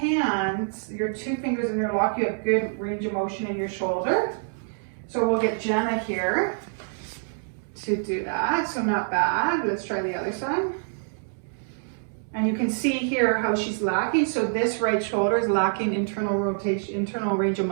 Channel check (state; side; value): silent; left; digital silence